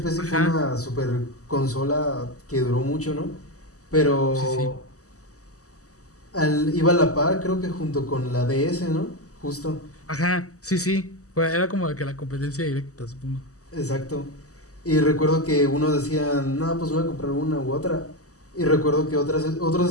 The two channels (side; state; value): right; late; 0.66 ms